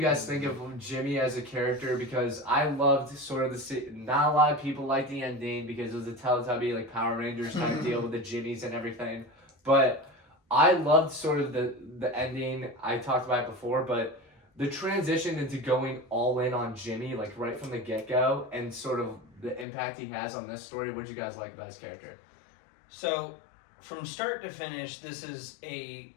guys think of Jimmy as a character? Because I loved sort of not a lot of people like the ending because it was a Teletubby, like Power Rangers type deal with the Jimmies and everything. But I loved sort of the ending. I talked about it before, but the transition into going all in on Jimmy, like right from the get-go, and sort of the impact he has on this story. What did you guys like about his character? So, from start to finish, this is a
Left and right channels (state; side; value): drops out; right; at 19.7 s